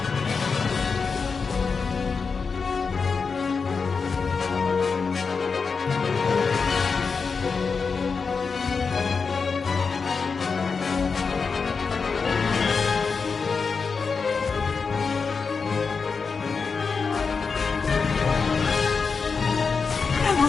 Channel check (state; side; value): quieter; right; 5.1 dB